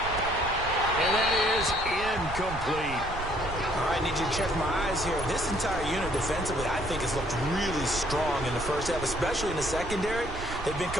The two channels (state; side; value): noise; right; rumble, 10 dB below the sound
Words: And that is incomplete. All right, I need you to check my eyes here. This entire unit defensively, I think, has looked really strong in the first half, especially in the secondary. They've been